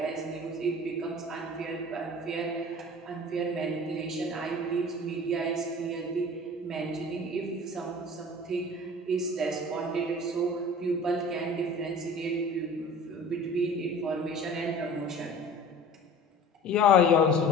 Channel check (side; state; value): both; normal; correlation 0.42